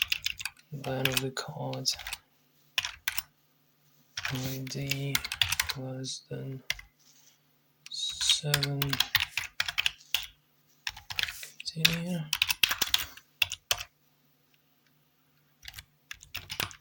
Then of the card ID less than 7. Continue.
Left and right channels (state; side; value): identical; both; correlation 1.00